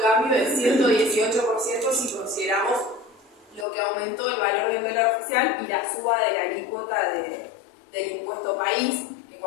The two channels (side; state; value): right; drops out; at 3.7 s